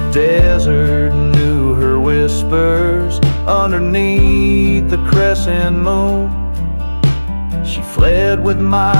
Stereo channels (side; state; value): both; inverted; correlation -1.00